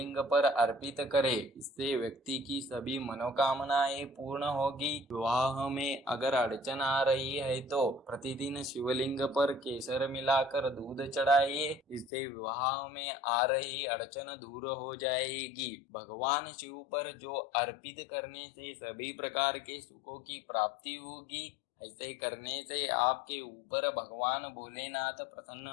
पर अर्पित करें। इससे व्यक्ति की सभी मनोकामनाएं पूर्ण होगी। विवाह में अगर अड़चन आ रही है तो प्रतिदिन शिवलिंग पर केसर मिलाकर दूध चढ़ाइए। इससे विवाह में आ रही अड़चन दूर हो जाएगी। भगवान शिव पर जो अर्पित करने से सभी प्रकार के सुखों की प्राप्ति होगी। ऐसे करने से आपके ऊपर भगवान भोलेनाथ प्रसन्न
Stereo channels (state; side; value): drops out; right; at 12.1 s